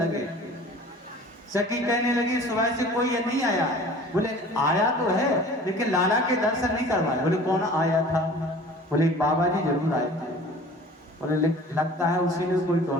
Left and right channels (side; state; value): both; normal; correlation 0.45